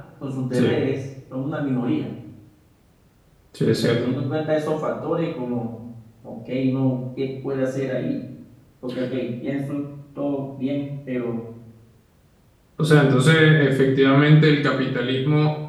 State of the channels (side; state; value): both; identical; correlation 1.00